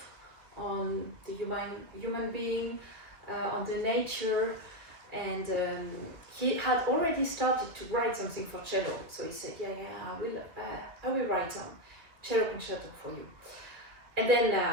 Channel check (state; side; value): late; left; 2.1 ms